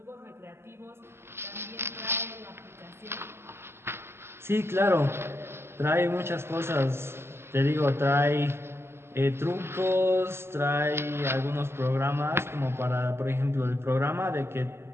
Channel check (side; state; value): left; late; 0.12 ms